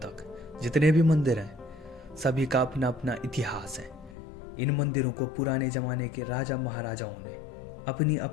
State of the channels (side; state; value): right; drops out; at 4.2 s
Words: जितने भी मंदिर हैं सभी का अपना अपना इतिहास है। इन मंदिरों को पुराने ज़माने के राजा महाराजाओं ने अपनी